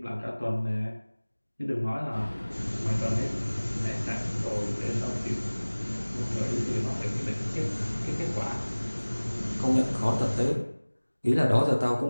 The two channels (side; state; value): both; inverted; correlation -1.00